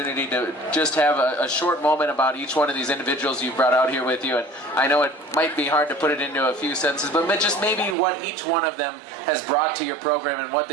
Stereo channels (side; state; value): left; drops out; at 8.0 s